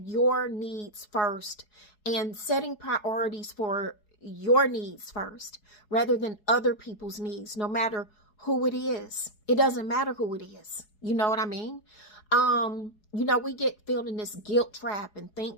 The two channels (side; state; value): right; late; 4.7 ms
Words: your needs first and setting priorities for your needs first rather than other people's needs, no matter who it is. It doesn't matter who it is. You know what I mean? We get filled in this guilt trap and